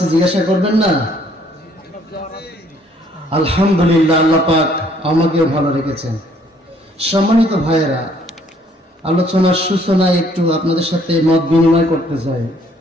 জিজ্ঞাসা করবেন না? আলহামদুলিল্লাহ, আল্লাহ পাক আমাকেও ভালো রেখেছেন। সম্মানিত ভাইয়েরা, আলোচনার সূচনায় একটু আপনাদের সাথে মত বিনিময় করতে চাই।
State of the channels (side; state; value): both; normal; correlation 0.63